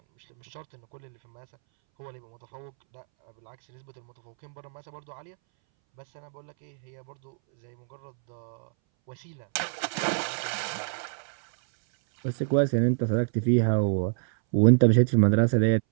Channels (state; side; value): silent; left; 60 dB below the other